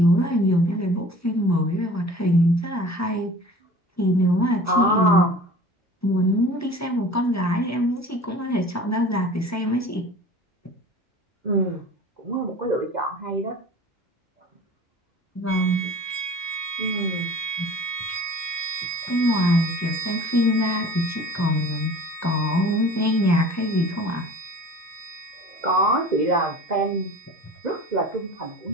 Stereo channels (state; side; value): normal; both; correlation 0.43